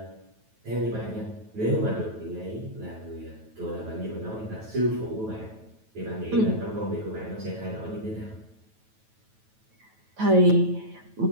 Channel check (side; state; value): left; late; 9.1 ms